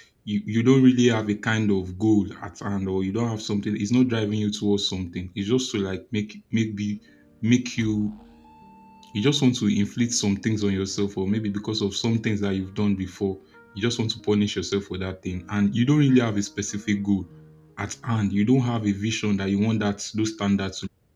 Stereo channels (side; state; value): both; identical; correlation 1.00